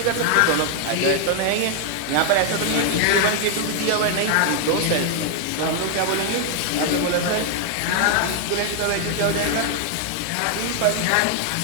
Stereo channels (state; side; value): different; both; correlation 0.00